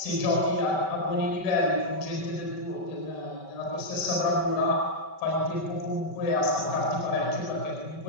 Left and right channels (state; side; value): late; right; 5.2 ms